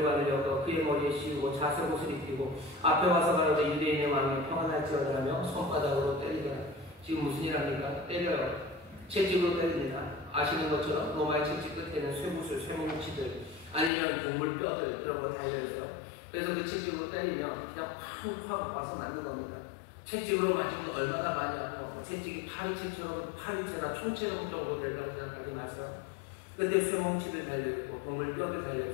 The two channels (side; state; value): right; drops out; at 13.9 s